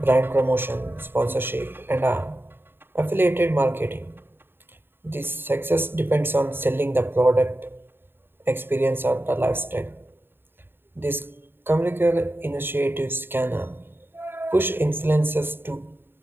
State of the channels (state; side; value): late; left; 0.10 ms